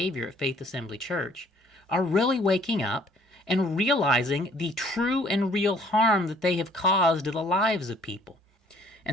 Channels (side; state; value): both; normal; correlation 0.59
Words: at Faith Assembly Church are really waking up and realizing the true and real harm that they have caused to the lives of people.